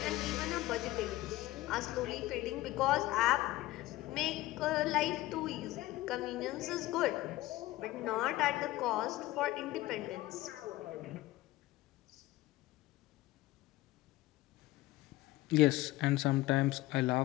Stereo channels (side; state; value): right; quieter; 17.5 dB